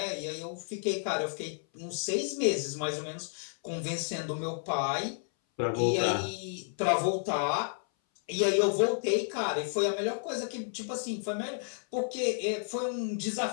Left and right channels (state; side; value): silent; right; 57 dB below the other